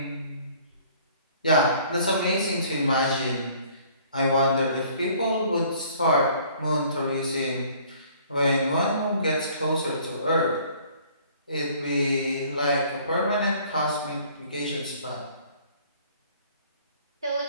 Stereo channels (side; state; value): both; inverted; correlation -0.55